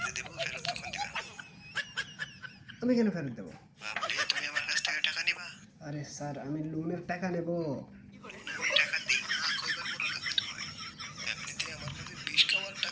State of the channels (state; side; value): identical; both; correlation 1.00